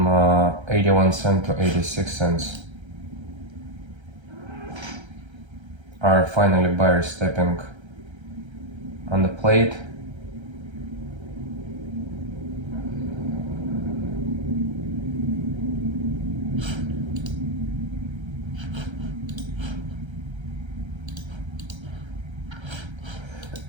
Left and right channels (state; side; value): late; left; 1.3 ms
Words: 81 cents to 86 cents. Are finally buyers stepping on the plate.